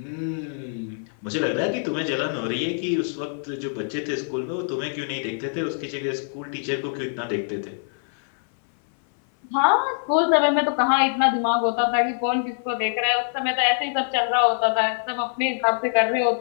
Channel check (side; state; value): right; silent; 59 dB below the other